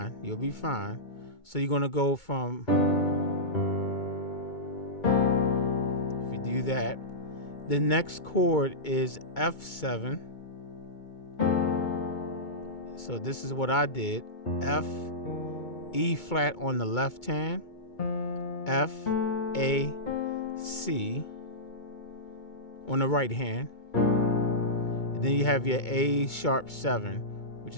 You'll be fine. So you're gonna go from. If do that. The next chord is F7. So this is what I did. F, E flat on the left hand, F, A, C on the right hand. And then you have your A sharp 7, which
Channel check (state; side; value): late; right; 2.2 ms